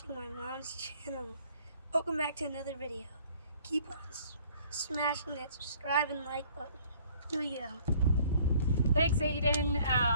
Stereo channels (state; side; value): inverted; both; correlation -0.57